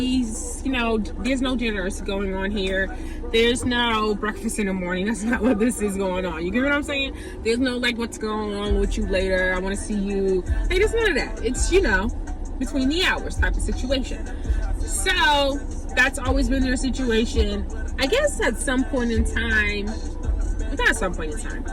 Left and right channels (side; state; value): both; identical; correlation 1.00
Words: there's no dinners going on here. There's no breakfast in the morning. That's not what this is going on. You get what I'm saying? There's no like, what's going on with you later? I want to see you. Hey, there's none of that. It's, between the hours type of situation. So that's always been their situation. I guess at some point in time, not at some point in time,